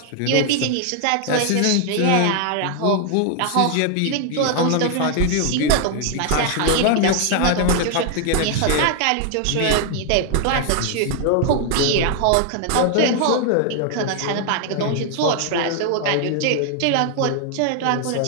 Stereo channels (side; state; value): both; different; correlation 0.00